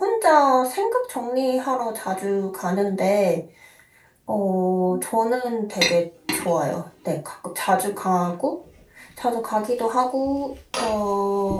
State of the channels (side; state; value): both; identical; correlation 1.00